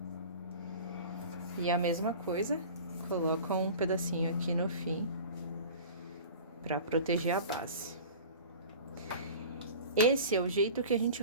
E a mesma coisa, coloca um pedacinho aqui no fim, pra proteger a base. Esse é o jeito que a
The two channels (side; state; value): both; inverted; correlation -0.38